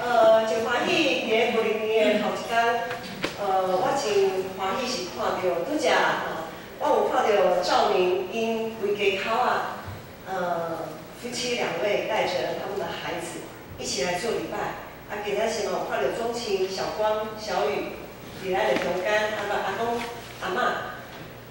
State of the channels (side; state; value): both; identical; correlation 1.00